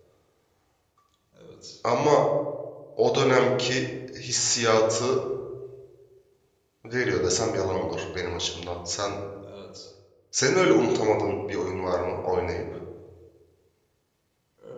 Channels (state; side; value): identical; both; correlation 1.00